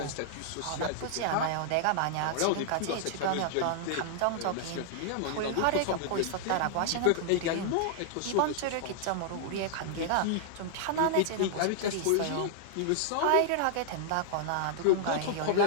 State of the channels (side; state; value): both; different; correlation -0.01